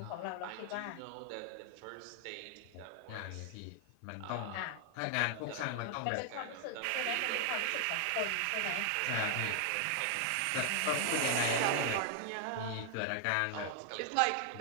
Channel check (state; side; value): different; both; correlation 0.00